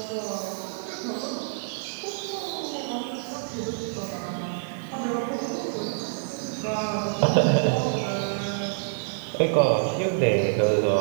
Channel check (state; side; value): silent; left; digital silence